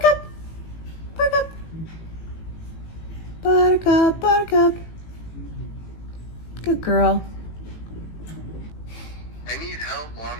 up. Back up. Buttercup. Buttercup. Good girl. I need help,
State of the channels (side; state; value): right; late; 18 ms